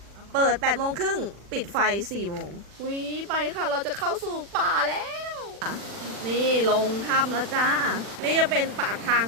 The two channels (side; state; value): left; late; 40 ms